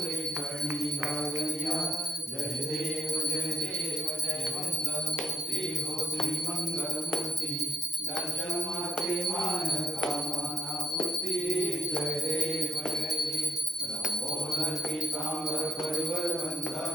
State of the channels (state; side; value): normal; both; correlation 0.78